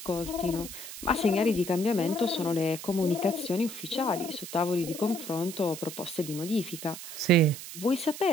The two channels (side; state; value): right; noise; hiss, 11 dB below the sound